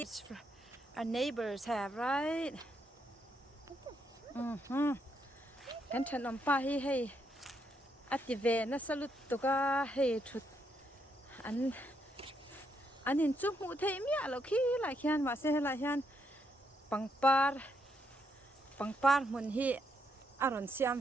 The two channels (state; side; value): normal; both; correlation 0.77